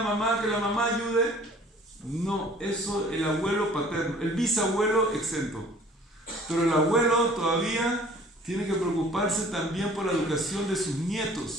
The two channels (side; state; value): both; normal; correlation 0.51